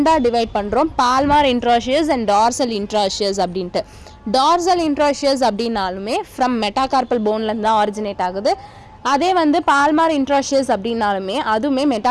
டிவைட் பண்ணுறோம், பால்மார் இன்ட்ராஷியஸ் அண்ட் டார்சல் இன்ட்ராஷியஸ் அப்படின்ட்டு. டார்சல் இன்ட்ராஷியஸ் அப்படின்னாலுமே ஃப்ரம் மெட்டாகார்பல் போன்லேருந்து தான் ஆரிஜினேட் ஆகுது. அதே வந்து பால்மார் இன்ட்ராஷியஸ் அப்படின்னாலுமே அதுவுமே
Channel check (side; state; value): both; identical; correlation 1.00